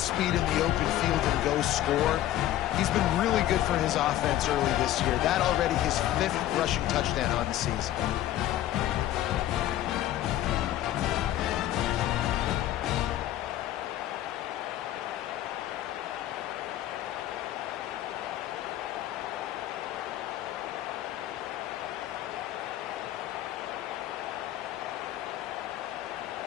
in the open field, and go score. He's been really good for his offense early this year. That already his 5th rushing touchdown on the season.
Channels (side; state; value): right; quieter; 13.4 dB